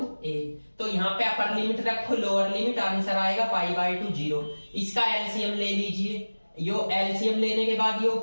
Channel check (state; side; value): inverted; both; correlation -1.00